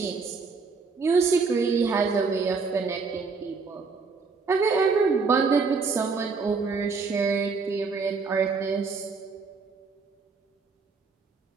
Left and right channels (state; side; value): quieter; left; 4.7 dB